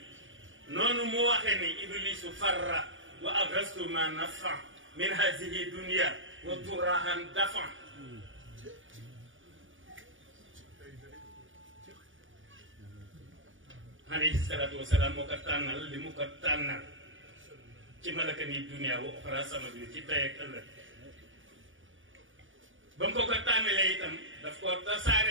noonu mu waxe ni iblisu farra wa agastu ma nafa min hazihi dunia wa turahan dafa alayhi salaatu wasalaam moo ko tànnal li mu ko tànnal ci malaka ni dunia wa oxra sama bi ci tey ak ëllëg ba mu ko tànnalee itam daf ko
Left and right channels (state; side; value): late; left; 0.57 ms